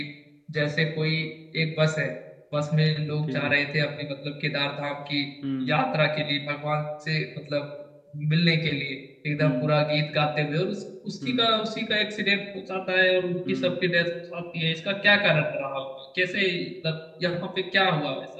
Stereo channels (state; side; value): identical; both; correlation 1.00